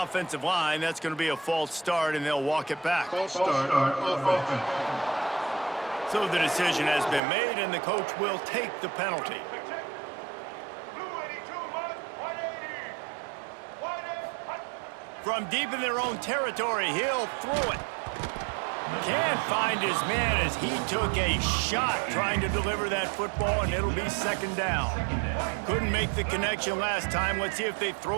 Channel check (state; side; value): drops out; left; at 7.2 s